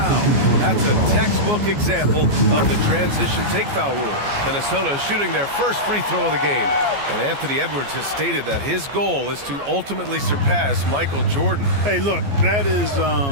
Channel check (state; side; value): late; left; 14 ms